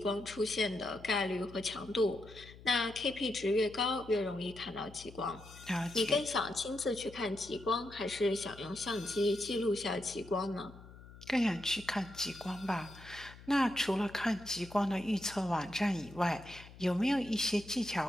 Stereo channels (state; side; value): noise; left; hum, 18 dB below the sound